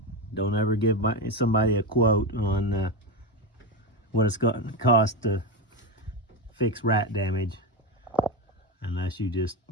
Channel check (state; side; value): normal; both; correlation 0.14